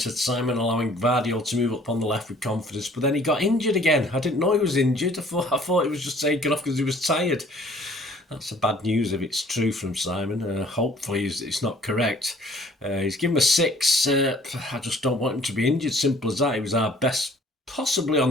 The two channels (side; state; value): both; normal; correlation 0.56